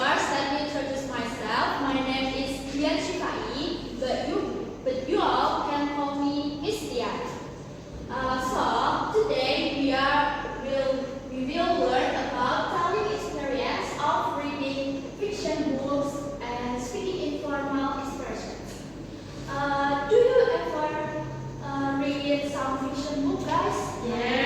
let me introduce myself. My name is Dian Shifai, but you all can call me Miss Dian. So today we will learn about telling experience of reading fiction books and speaking informal expressions. Do you ever read some fiction book, guys?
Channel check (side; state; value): both; identical; correlation 1.00